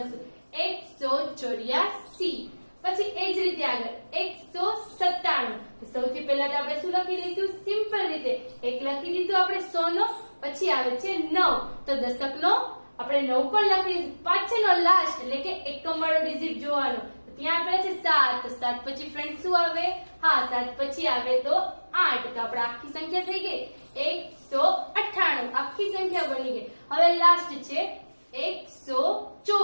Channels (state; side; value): inverted; both; correlation -1.00